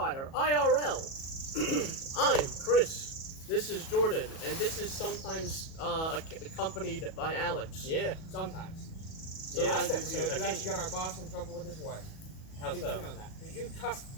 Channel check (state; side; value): late; right; 37 ms